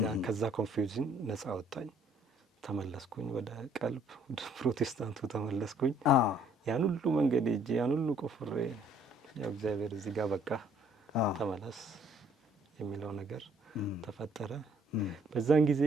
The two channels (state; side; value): normal; both; correlation 0.61